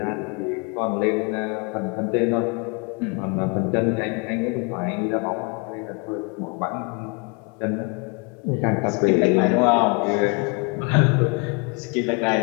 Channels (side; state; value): right; quieter; 32.7 dB